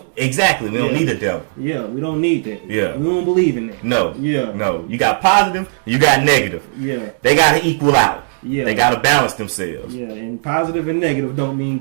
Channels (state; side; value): silent; left; digital silence